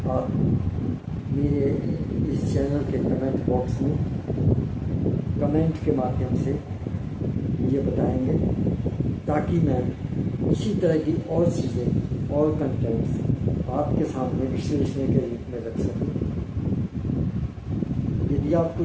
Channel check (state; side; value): identical; both; correlation 1.00